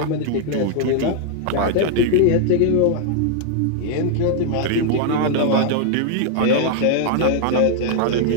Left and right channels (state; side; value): different; both; correlation 0.00